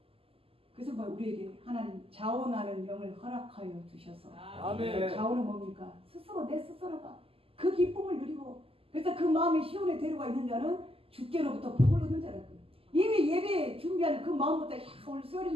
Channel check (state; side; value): late; left; 0.27 ms